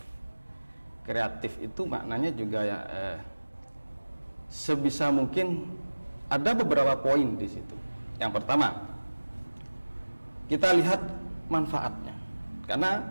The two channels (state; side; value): inverted; both; correlation -1.00